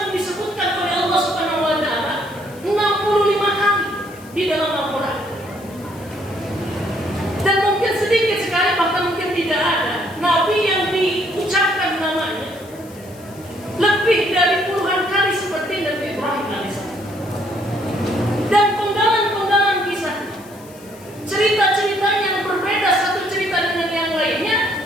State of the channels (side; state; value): left; noise; hiss, 23 dB below the sound